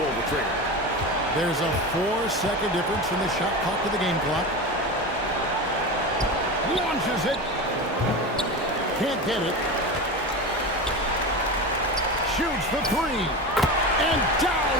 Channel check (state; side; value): normal; both; correlation 0.25